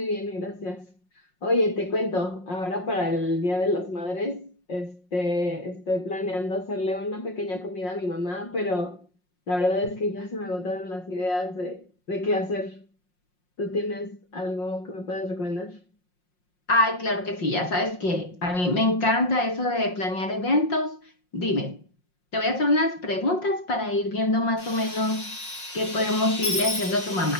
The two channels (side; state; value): right; late; 5.6 ms